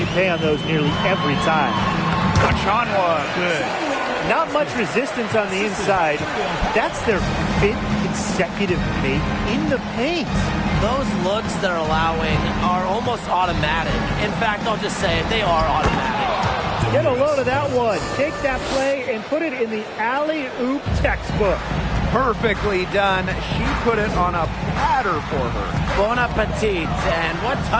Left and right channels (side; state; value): both; identical; correlation 1.00